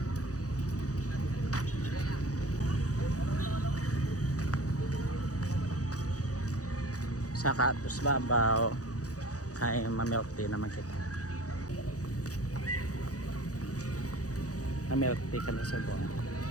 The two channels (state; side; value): late; right; 0.67 ms